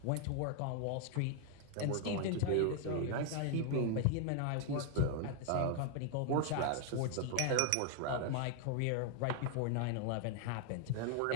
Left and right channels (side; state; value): both; different; correlation 0.00